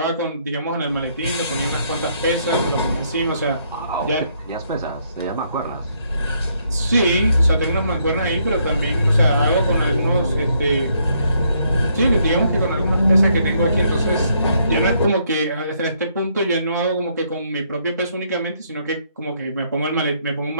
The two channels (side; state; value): both; inverted; correlation -0.71